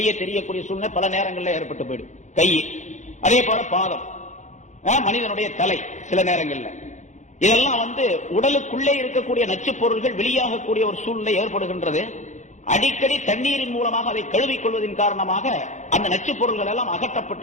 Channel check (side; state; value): right; late; 0.35 ms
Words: தெரியக்கூடிய சூழ்நிலை பல நேரங்களில் ஏற்பட்டு போயிடும். கை, அதே போல பாதம், மனிதனுடைய தலை, சில நேரங்கள்ல இதெல்லாம் வந்து உடலுக்குள்ளே இருக்கக்கூடிய நச்சு பொருள்கள் வெளியாகக்கூடிய ஒரு சூழ்நிலை ஏற்படுகின்றது. அடிக்கடி தண்ணீரின் மூலமாக அதை கழுவிக் கொள்வதன் காரணமாக அந்த நச்சு பொருள்கள் எல்லாம்